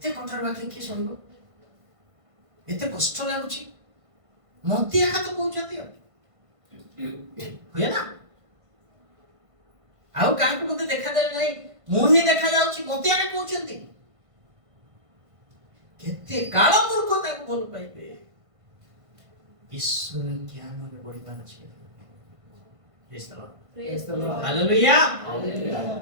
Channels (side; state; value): left; late; 1.5 ms